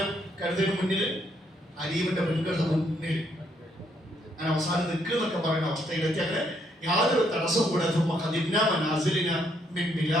കരുതലിന് മുന്നിൽ, അലീമിന്റെ പെൺകളുടെ മുന്നിൽ അങ്ങനെ അവസാനം നിൽക്കുന്നൊക്കെ പറയുന്ന അവസ്ഥയിലെത്തി. അങ്ങനെ യാതൊരു തടസ്സവും കൂടാതെ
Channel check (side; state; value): both; normal; correlation 0.71